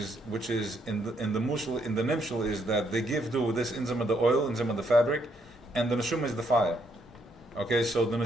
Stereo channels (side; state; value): both; normal; correlation 0.73